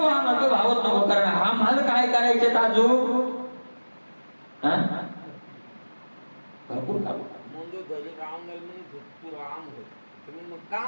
आम्हाला तो भावच नको, कारण आम्हाला काय करायचे अजून भरपूर काम.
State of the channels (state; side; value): inverted; both; correlation -1.00